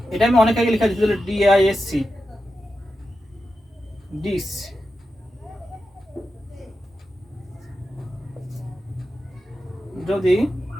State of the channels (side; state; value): both; normal; correlation 0.90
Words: এটা আমি অনেক আগে লেখা দিয়েছিল, ডিআইএসসি ডিস। যদি